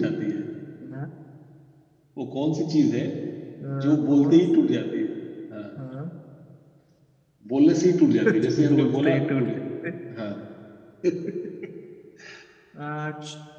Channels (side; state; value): both; identical; correlation 1.00